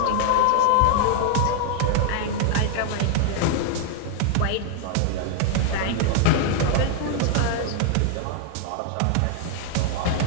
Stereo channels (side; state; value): both; different; correlation 0.00